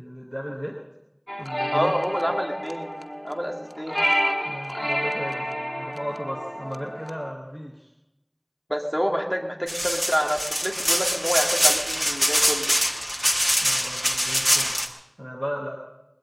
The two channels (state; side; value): identical; both; correlation 1.00